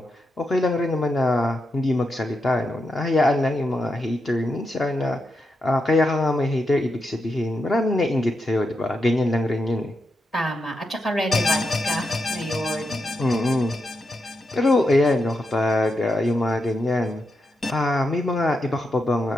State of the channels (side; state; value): both; normal; correlation 0.85